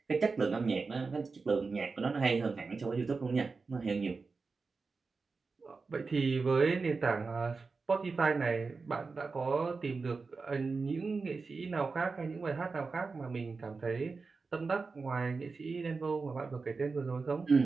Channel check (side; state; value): left; quieter; 4.4 dB